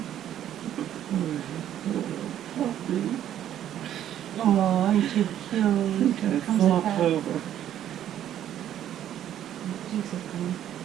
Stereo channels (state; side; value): quieter; left; 11.0 dB